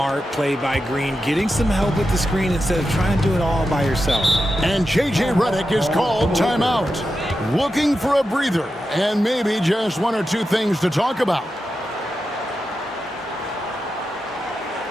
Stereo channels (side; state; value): both; normal; correlation 0.89